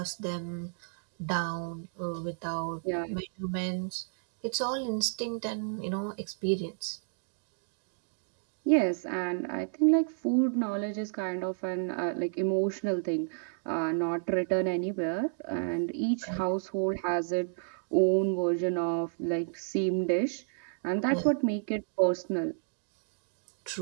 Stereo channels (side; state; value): left; silent; digital silence